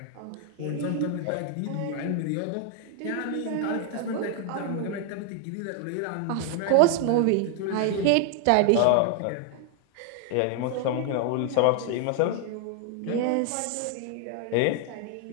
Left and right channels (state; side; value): different; both; correlation 0.00